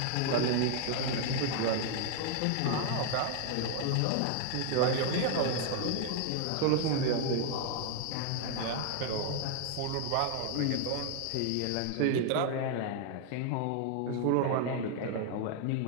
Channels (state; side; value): different; both; correlation 0.00